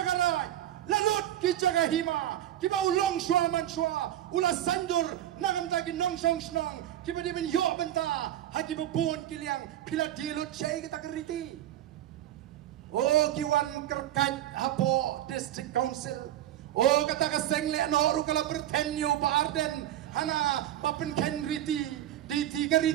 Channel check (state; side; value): quieter; left; 12.5 dB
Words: lalut ki cakahima, kiba ulong shua man shua, ula sandur nagam taki nong shong snong, kiba di ben yo benta, haki bubun kiliang pila dilut syai kita keriti. Oh kiwan kerkat hapo district council. Oh kata kasengle no rukala bertenyo pa Arden. Hana papin ken riti di tiga